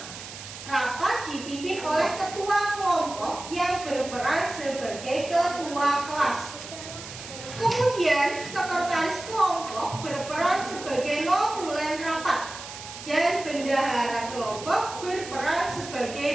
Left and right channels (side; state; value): right; noise; hiss, 12 dB below the sound